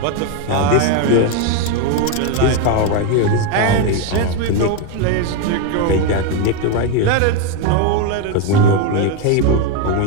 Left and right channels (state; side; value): different; both; correlation 0.02